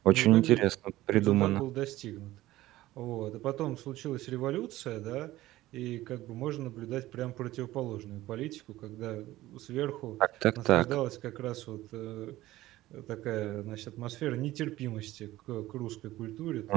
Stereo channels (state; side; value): quieter; left; 16.4 dB